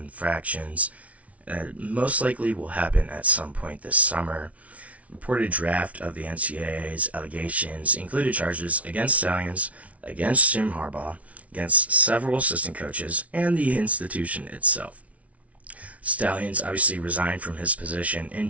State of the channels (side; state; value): left; late; 0.066 ms